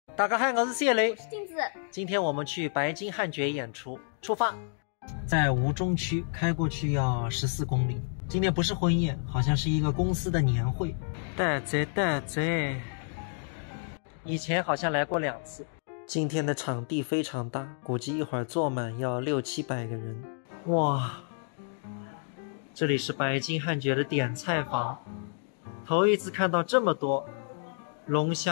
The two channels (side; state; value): right; silent; digital silence